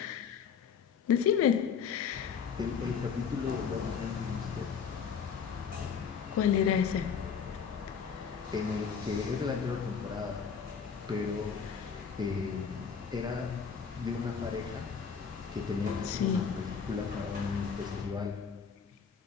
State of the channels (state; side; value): quieter; right; 6.6 dB